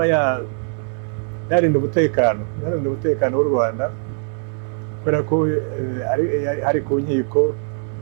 yarinda umutekano w'u Rwanda, kubera ko hari ku nkiko,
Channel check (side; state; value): left; silent; 56 dB below the other